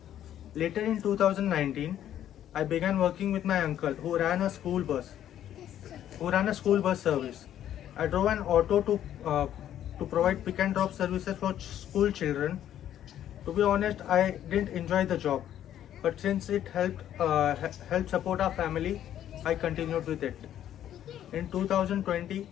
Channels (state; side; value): quieter; right; 11.1 dB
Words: Later in 2019, I began working with my uncle who ran a school bus service. I drove an auto to provide pick and drop services for school children. To be honest, I didn't enjoy the job, but since it helped support our family, I continued with it. In 2020,